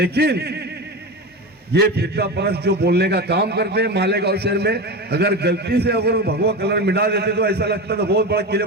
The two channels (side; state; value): both; normal; correlation 0.23